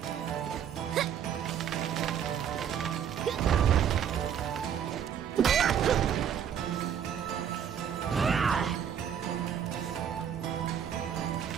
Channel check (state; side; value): quieter; left; 8.7 dB